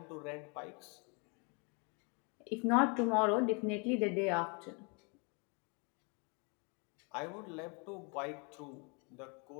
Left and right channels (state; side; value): quieter; right; 33.6 dB